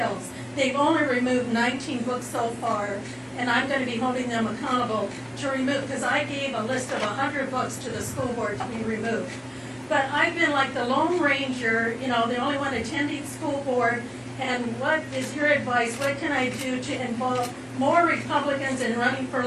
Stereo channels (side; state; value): both; identical; correlation 1.00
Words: They've only removed 19 books so far, and I'm going to be holding them accountable to remove, because I gave a list of 100 books to the school board to be removed. But I've been like the Lone Ranger, you know, the only one attending school board, and what is your advice? What can I do to involve more Republicans in running for